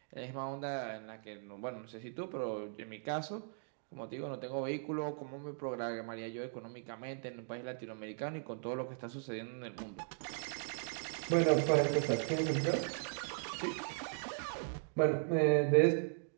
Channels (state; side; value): silent; left; digital silence